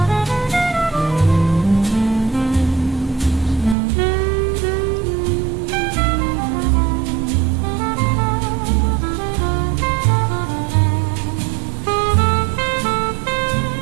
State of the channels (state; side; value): drops out; left; at 3.8 s